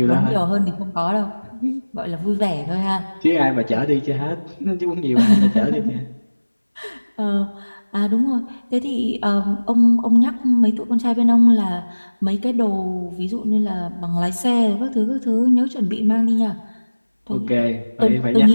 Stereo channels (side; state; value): both; inverted; correlation -1.00